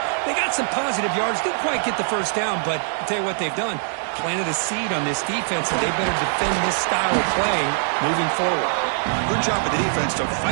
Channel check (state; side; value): silent; left; digital silence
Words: They got some positive yards, didn't quite get the first down, but I'll tell you what they've done. Planted a seed on this defense, and they better defend this style of play moving forward. Good job of the defense to